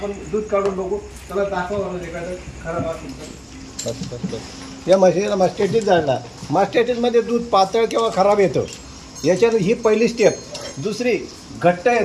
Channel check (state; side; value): identical; both; correlation 1.00